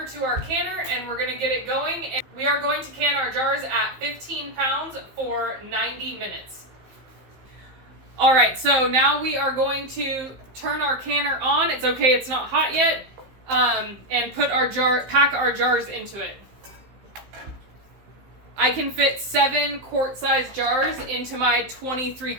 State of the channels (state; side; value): late; left; 15 ms